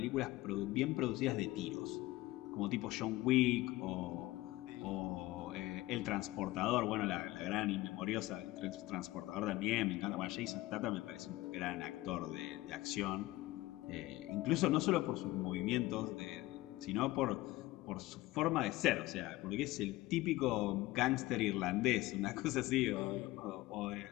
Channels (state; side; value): quieter; right; 18.6 dB